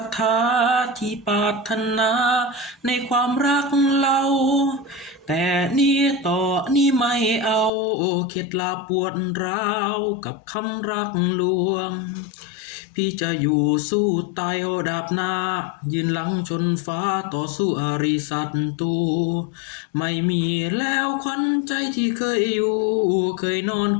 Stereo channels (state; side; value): drops out; right; at 7.7 s